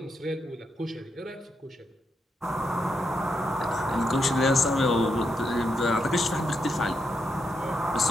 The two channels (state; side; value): normal; both; correlation 0.82